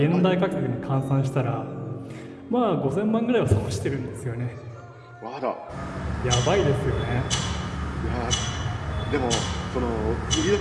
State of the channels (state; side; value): identical; both; correlation 1.00